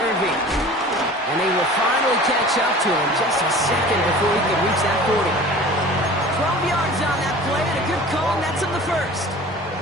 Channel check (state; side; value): normal; both; correlation 0.42